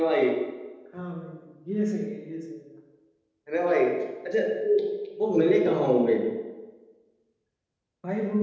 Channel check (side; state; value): both; identical; correlation 1.00